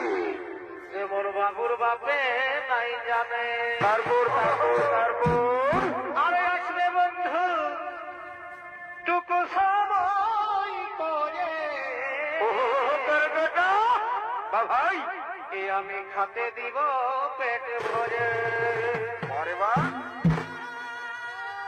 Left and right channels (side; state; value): both; identical; correlation 1.00